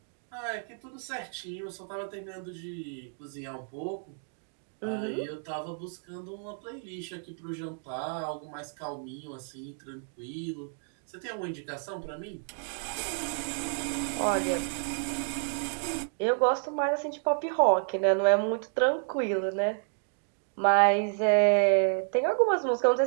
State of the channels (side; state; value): left; silent; digital silence